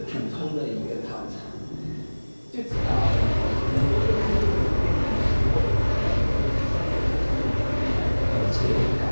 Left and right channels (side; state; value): both; inverted; correlation -1.00